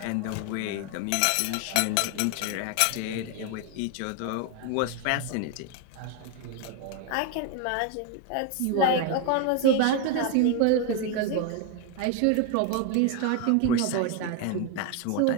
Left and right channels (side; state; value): both; different; correlation 0.01